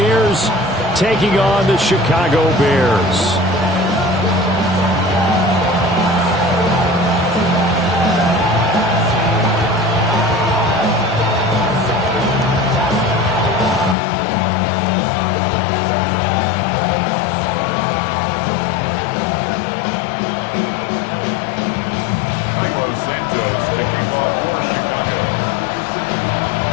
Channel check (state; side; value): drops out; right; at 14.0 s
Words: taking on the Chicago Bears.